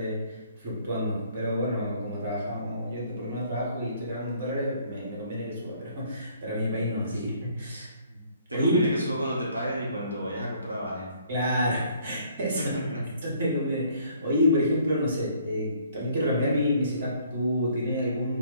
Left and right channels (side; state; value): both; inverted; correlation -0.61